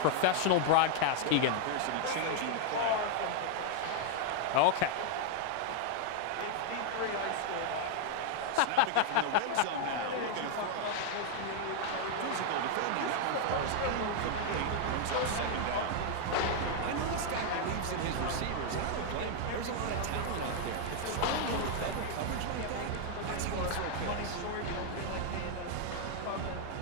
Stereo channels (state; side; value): different; both; correlation 0.00